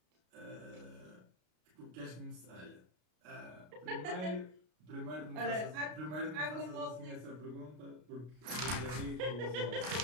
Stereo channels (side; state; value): left; late; 33 ms